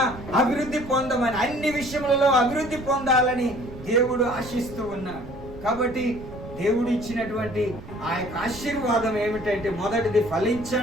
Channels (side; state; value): right; noise; rumble, 15 dB below the sound